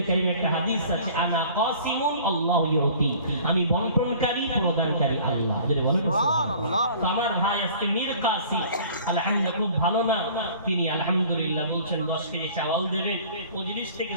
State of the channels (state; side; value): inverted; both; correlation -0.49